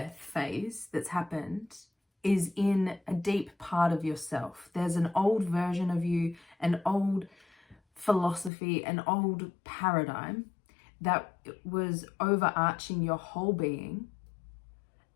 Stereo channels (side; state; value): right; drops out; at 8.5 s